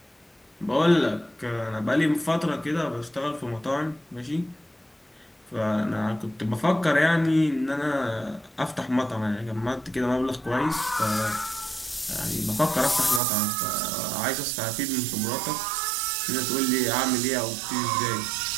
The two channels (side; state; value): left; drops out; at 13.2 s